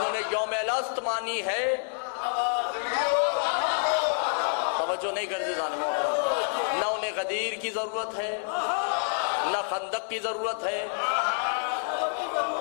نے یوم الست مانی ہے, توجہ نہیں کرتے ظالموں, نہ انہیں غدیر کی ضرورت ہے نہ خندق کی ضرورت ہے.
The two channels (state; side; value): silent; right; 59 dB below the other